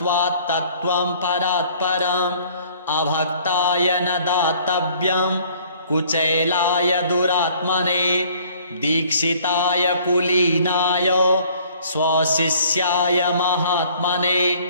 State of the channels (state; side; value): inverted; both; correlation -0.56